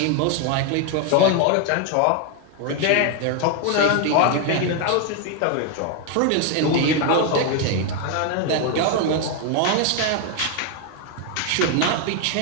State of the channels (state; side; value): different; both; correlation 0.01